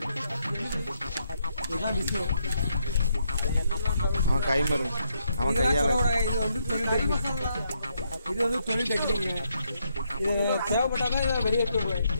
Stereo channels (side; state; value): both; inverted; correlation -0.76